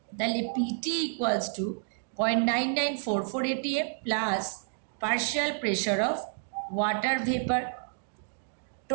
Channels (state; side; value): silent; left; digital silence